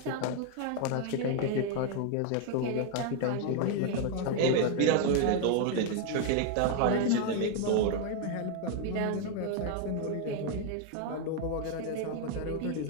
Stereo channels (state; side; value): different; both; correlation 0.00